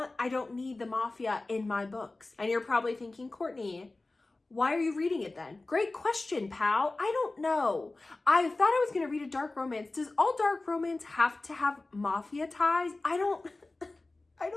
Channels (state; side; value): quieter; right; 3.1 dB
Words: need the mafia in my books. And you're probably thinking, Courtney, why are you reading it then? Great question, pal. I don't know. I thought I was gonna read a dark romance. Does all dark romance have to have mafia ties? I